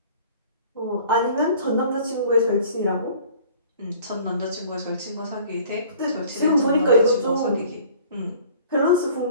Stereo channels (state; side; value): inverted; both; correlation -0.50